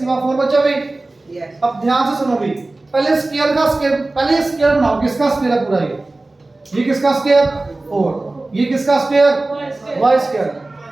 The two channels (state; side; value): quieter; left; 3.0 dB